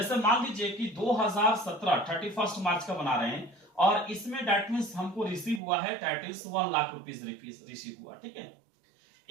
मान लीजिए कि 2017 31 मार्च का बना रहे हैं और इसमें दैट मींस हमको रिसीव हुआ है that is 1 lakh rupees receive हुआ, ठीक है,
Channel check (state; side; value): drops out; left; at 5.6 s